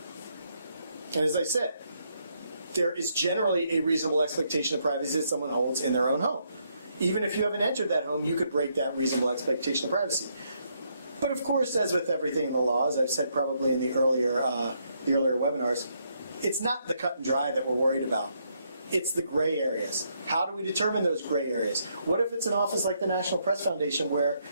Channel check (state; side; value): inverted; both; correlation -0.75